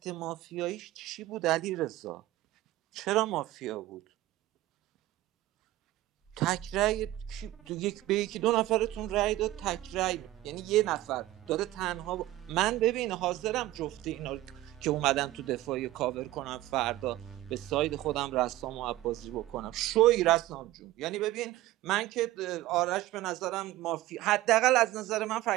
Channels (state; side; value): quieter; left; 16.2 dB